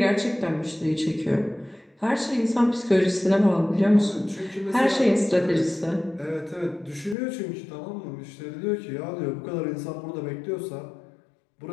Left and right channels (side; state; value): right; drops out; at 7.2 s